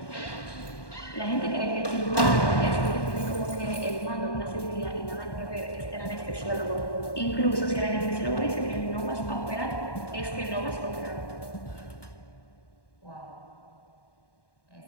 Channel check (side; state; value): right; late; 1.2 ms